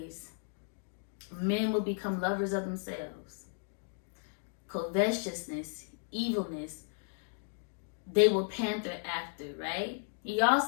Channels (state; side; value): silent; right; digital silence